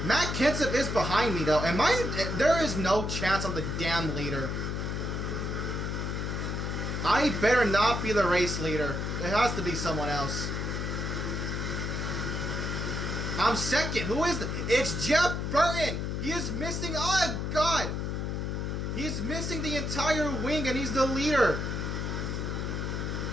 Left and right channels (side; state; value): left; noise; hum, 2 dB below the sound